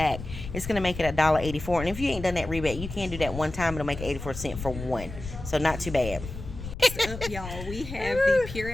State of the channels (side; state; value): left; noise; rumble, 10 dB below the sound